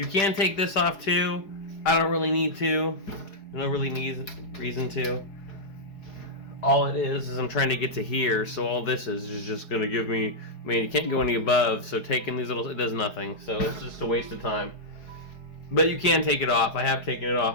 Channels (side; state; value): right; late; 4.7 ms